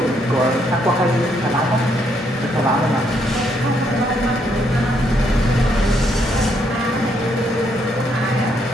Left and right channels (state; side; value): normal; both; correlation 0.73